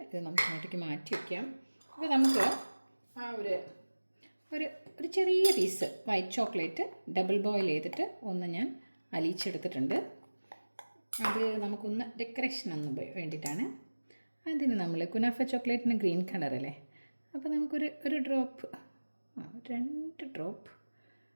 ഇത് നമുക്ക് അങ്ങോട്ടേക്ക് മാറ്റി വയ്ക്കാം. അപ്പോൾ നമുക്ക് ഒരു ചെറിയ piece white chocolate double boil ചെയ്തിട്ട് ഒന്ന് ഞാൻ അലിയിച്ചെടുത്തിട്ടുണ്ട്. അത് നമുക്കൊന്ന് ഡെക്കറേഷൻ ഒന്ന് വേണ്ടിയിട്ടാണ്. അതിന് നമ്മൾ കുനാഫ ചോക്ലേറ്റിന് ഗ്രീൻ കളറല്ലേ, അപ്പോൾ നമുക്കൊരു ഡ്രോപ്പ് 2 ഡ്രോപ്പ്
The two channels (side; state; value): both; inverted; correlation -1.00